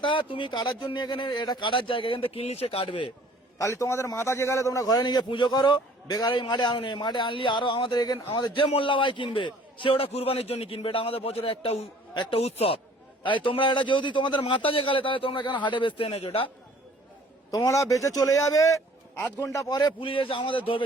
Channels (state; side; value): normal; both; correlation 0.54